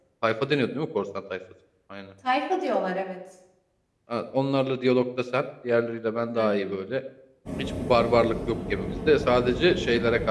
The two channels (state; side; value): identical; both; correlation 1.00